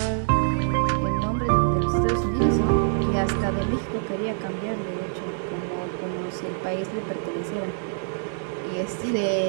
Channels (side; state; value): left; silent; digital silence